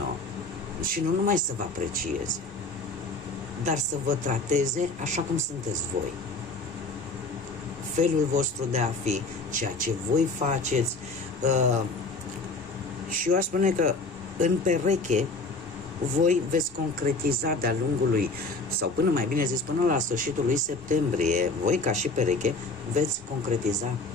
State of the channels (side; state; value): right; quieter; 3.2 dB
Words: și nu numai să vă aprecieze, dar să vă trateze așa cum sunteți voi. Felul vostru de a fi, ceea ce voi faceți. Și eu aș spune că în pereche voi veți concretiza de-a lungul sau până mai bine zis, până la sfârșitul lui septembrie, voi ca și pereche veți concretiza